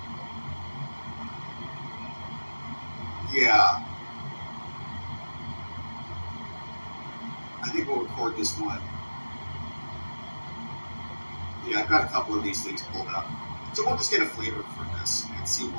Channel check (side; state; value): both; inverted; correlation -1.00